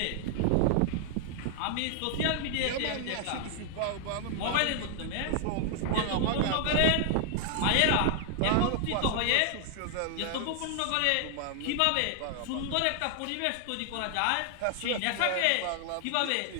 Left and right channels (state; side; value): different; both; correlation 0.00